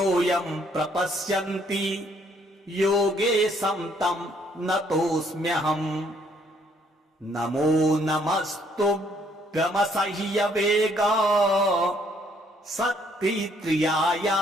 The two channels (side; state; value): both; normal; correlation 0.67